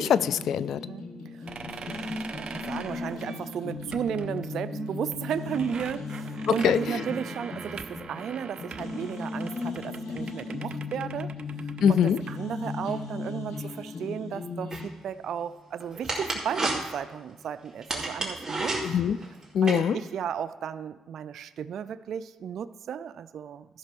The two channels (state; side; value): normal; both; correlation 0.67